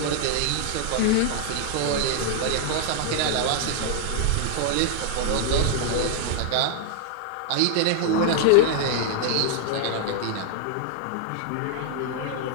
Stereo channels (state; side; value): different; both; correlation 0.00